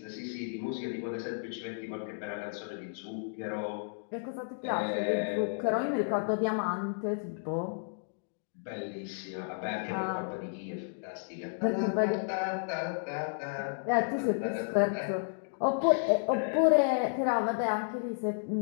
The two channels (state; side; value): silent; right; digital silence